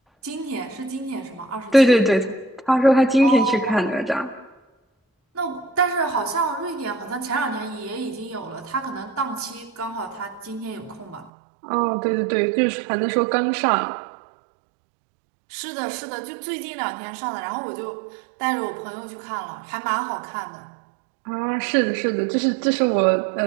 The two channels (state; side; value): drops out; left; at 11.3 s